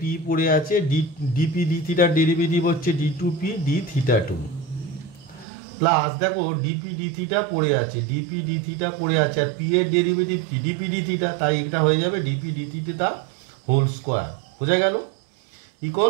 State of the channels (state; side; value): drops out; left; at 5.5 s